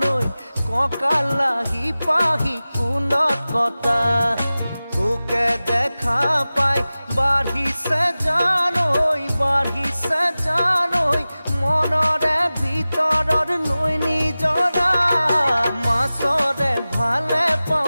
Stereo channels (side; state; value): both; inverted; correlation -0.97